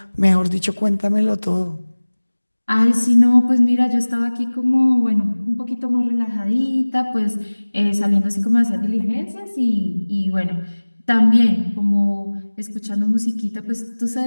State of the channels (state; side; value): inverted; both; correlation -1.00